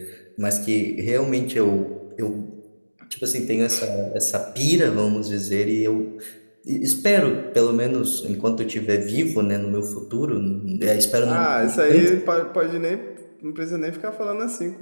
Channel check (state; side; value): inverted; both; correlation -1.00